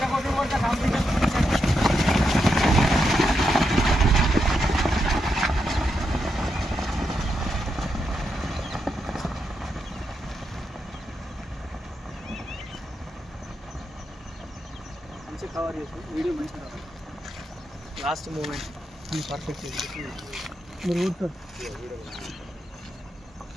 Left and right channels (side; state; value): both; normal; correlation 0.84